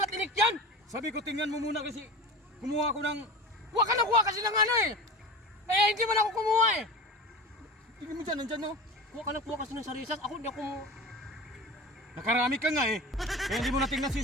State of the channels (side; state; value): both; normal; correlation 0.32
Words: yan. Sabi ko tingnan mo muna kasi kumuha ko ng... Huwag ka nakuha kasi ng ano eh. Eh, hindi man ako kumuha eh. Tingnan mo dyan, nandyan no. Huwag ka nakuha kasi ng sarisas. Ako hindi ako... Nakarami ka nga eh. Kaya hindi mo natingnan si